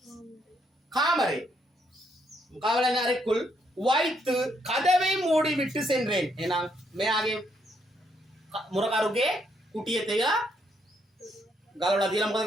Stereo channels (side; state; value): both; normal; correlation 0.74